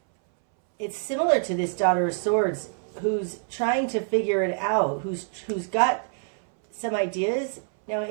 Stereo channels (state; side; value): silent; left; 61 dB below the other